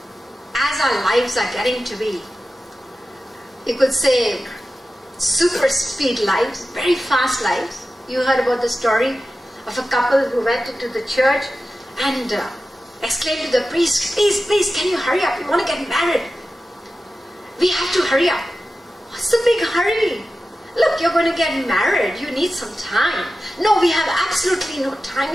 As our lives are getting to be, you could say, super speed lives, very fast lives. You heard about the story of a couple who went into the church and exclaimed to the priest, please, please, can you hurry up? We want to get married. We have to hurry up. What's the big hurry? Look, you're going to get married. You need some time. No, we have absolutely no time.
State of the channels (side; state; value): both; normal; correlation 0.93